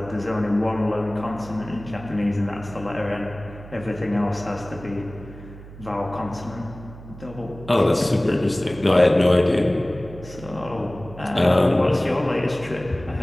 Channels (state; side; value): noise; right; hum, 16 dB below the sound